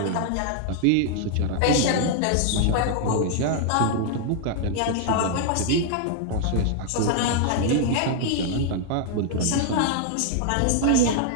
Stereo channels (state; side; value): different; both; correlation 0.00